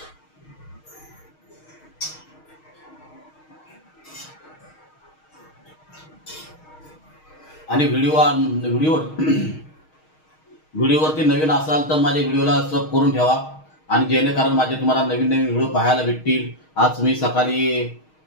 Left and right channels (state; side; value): late; right; 6.4 ms